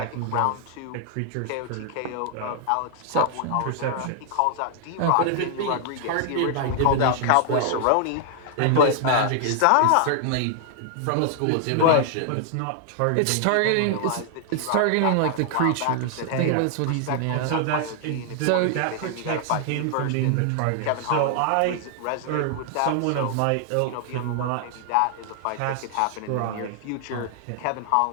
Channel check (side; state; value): both; different; correlation 0.00